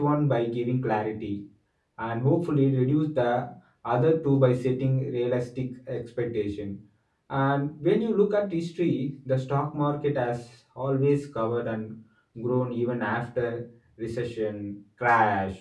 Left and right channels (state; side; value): identical; both; correlation 1.00